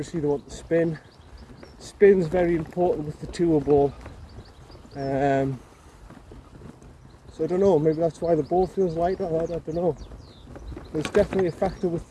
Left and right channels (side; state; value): both; identical; correlation 1.00